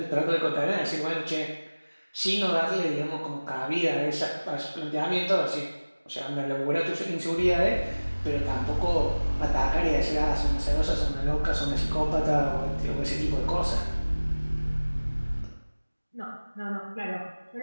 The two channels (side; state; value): both; inverted; correlation -1.00